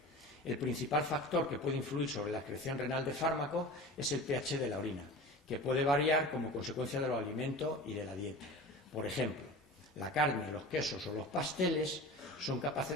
El principal factor que puede influir sobre la excreción renal de fármacos es el pH de la orina, que puede variar como consecuencia de los alimentos y de la dieta. Por ejemplo, la carne, los quesos o los pasteles son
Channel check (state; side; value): normal; both; correlation 0.35